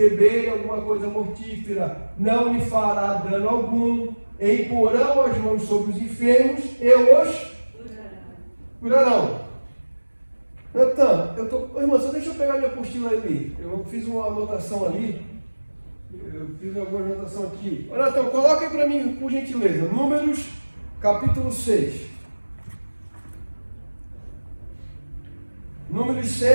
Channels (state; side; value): inverted; both; correlation -1.00